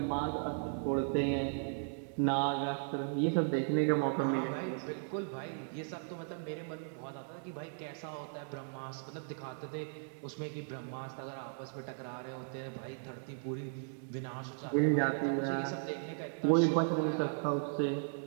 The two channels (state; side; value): silent; left; 53 dB below the other